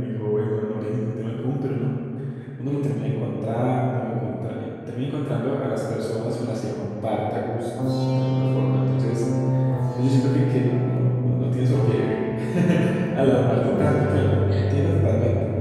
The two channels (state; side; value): identical; both; correlation 1.00